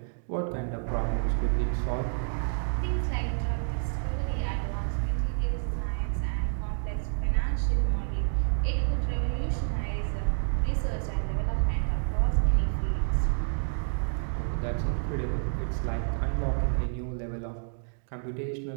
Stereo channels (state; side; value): silent; left; digital silence